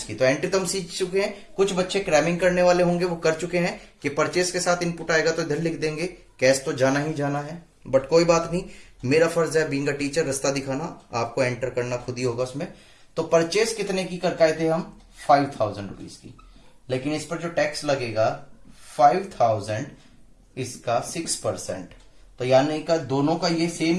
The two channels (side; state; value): both; identical; correlation 1.00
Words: की। तो एंट्री तो हम सीख चुके हैं, कुछ बच्चे क्रैमिंग करने वाले होंगे वो कर चुके हैं कि परचेस के साथ इनपुट आएगा तो इधर लिख देंगे, कैश तो जाना ही जाना है। बट कोई बात नहीं, मेरा फर्ज है बीइंग अ टीचर रास्ता दिखाना, आपको एंटर करना खुद ही होगा उसमें। तो परचेस कितने की करके आए थे हम? 5000 रुपीज की, लेकिन इस पर जो टैक्स लगेगा 5000, इसका 6%। तो यानी का दोनों का ये सेम